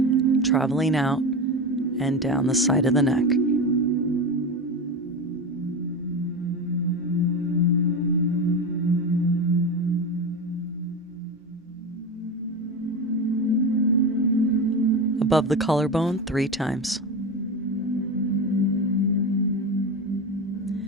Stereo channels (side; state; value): both; normal; correlation 0.22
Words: traveling out and down the side of the neck. Above the collarbone 3 times.